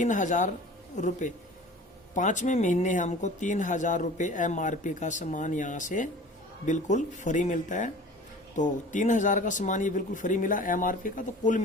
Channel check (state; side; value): normal; both; correlation 0.43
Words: रुपये, 5वें महीने हमको 3000 रुपये MRP का सामान यहाँ से बिल्कुल फ्री मिलता है। तो 3000 का सामान ये बिल्कुल फ्री मिला MRP का। तो कुल